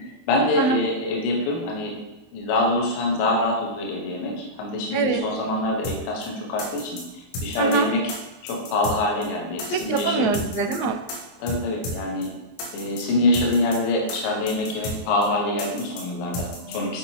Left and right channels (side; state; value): right; late; 23 ms